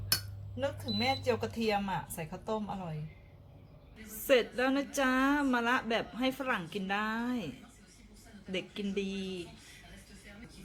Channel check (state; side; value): identical; both; correlation 1.00